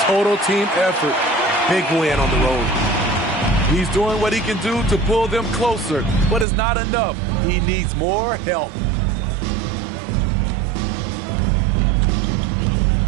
Total team effort. Big win on the road. He's doing what he can do to pull them closer, but it's not enough. He needs more help.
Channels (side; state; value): left; drops out; at 6.5 s